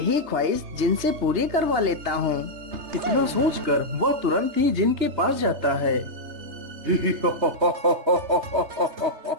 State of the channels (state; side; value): late; left; 3.3 ms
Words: ख्वाहिश जिनसे पूरी करवा लेता हूँ। इतना सोचकर वह तुरंत ही जिन के पास जाता है।